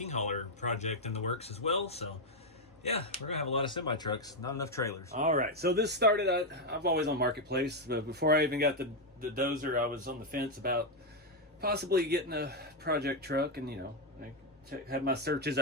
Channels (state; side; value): normal; both; correlation 0.03